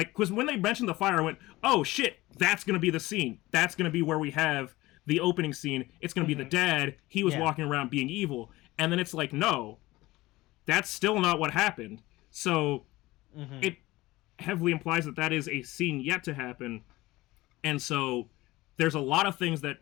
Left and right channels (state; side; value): quieter; right; 19.1 dB